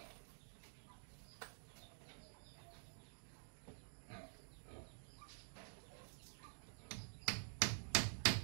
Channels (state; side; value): silent; left; digital silence